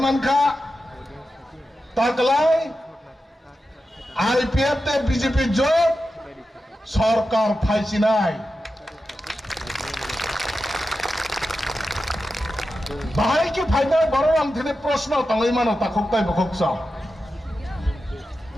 তাকলাই আইপিএফ তে বিজেপি জোট সরকার ফাইছিনাই বাহাই কি ফাইনাল বড় আংথিনে প্রশ্ন তাঙ্গই মানো তাখকতাই বখকসা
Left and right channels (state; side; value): normal; both; correlation 0.91